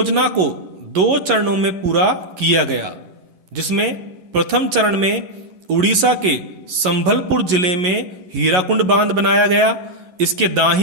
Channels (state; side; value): late; left; 11 ms